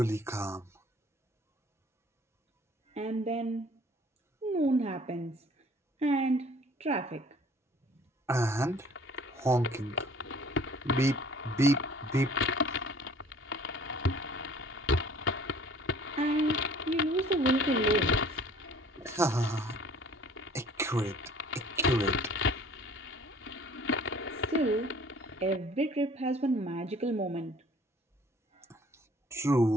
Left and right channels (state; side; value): normal; both; correlation 0.53